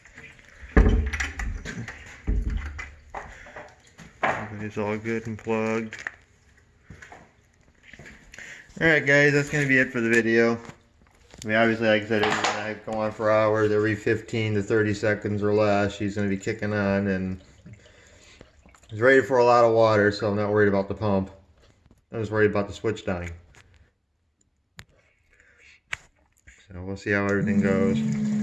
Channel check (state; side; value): identical; both; correlation 1.00